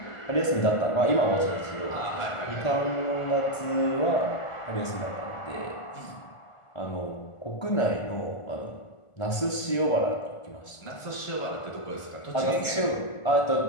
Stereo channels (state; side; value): late; right; 1.4 ms